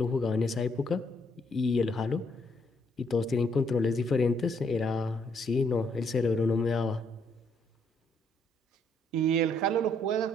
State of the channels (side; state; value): both; normal; correlation 0.70